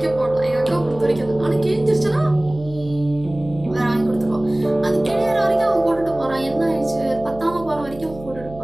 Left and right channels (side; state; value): right; noise; hum, 17 dB below the sound